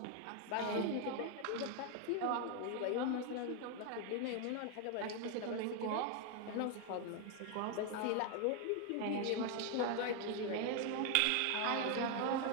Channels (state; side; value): different; both; correlation 0.01